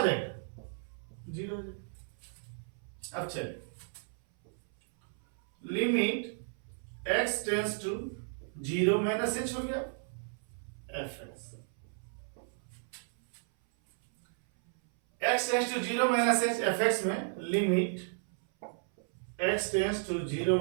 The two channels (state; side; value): silent; left; 55 dB below the other